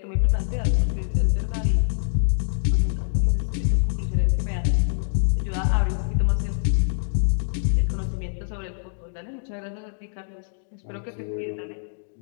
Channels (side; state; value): right; silent; digital silence